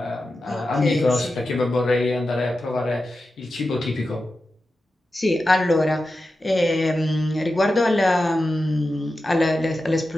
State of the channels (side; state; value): both; normal; correlation 0.92